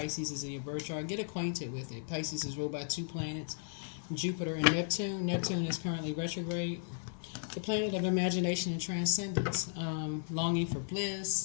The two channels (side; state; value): right; silent; 54 dB below the other